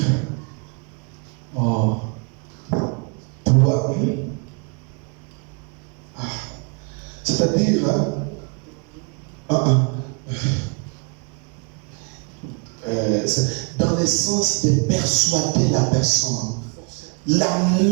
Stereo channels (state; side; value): quieter; left; 34.8 dB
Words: c'est-à-dire c'est dans le sens de persuader la personne, la